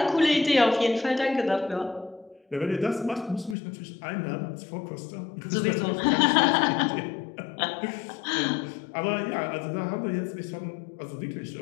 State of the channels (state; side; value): drops out; right; at 3.6 s